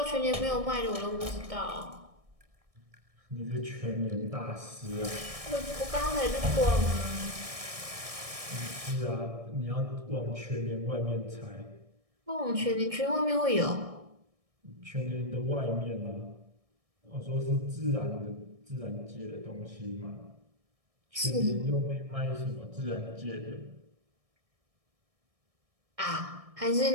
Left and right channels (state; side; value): late; left; 1.6 ms